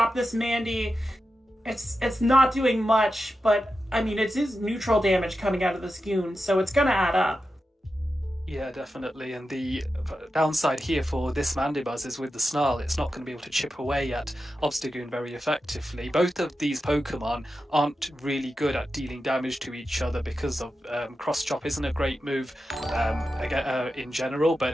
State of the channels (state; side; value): normal; both; correlation 0.91